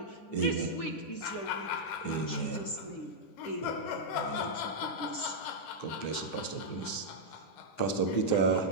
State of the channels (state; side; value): late; right; 10 ms